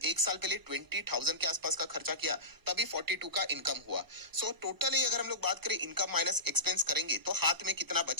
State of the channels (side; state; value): left; late; 1.0 ms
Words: एक साल पहले 20,000 के आसपास का खर्चा किया तभी 42 का इनकम हुआ। सो टोटली अगर हम लोग बात करें इनकम माइनस एक्सपेंस करेंगे तो हाथ में कितना